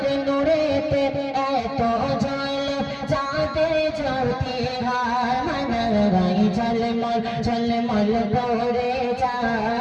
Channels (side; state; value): both; identical; correlation 1.00